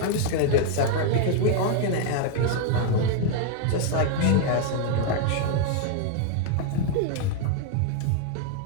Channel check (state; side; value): different; both; correlation 0.00